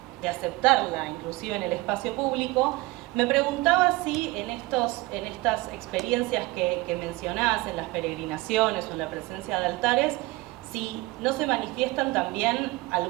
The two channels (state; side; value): quieter; left; 21.4 dB